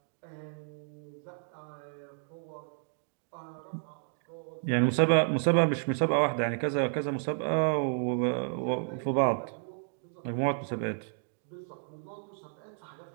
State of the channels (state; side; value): silent; left; 57 dB below the other